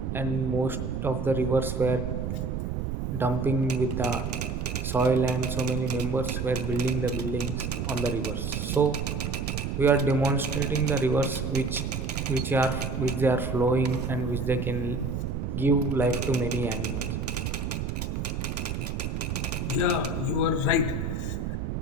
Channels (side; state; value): right; noise; rumble, 3 dB below the sound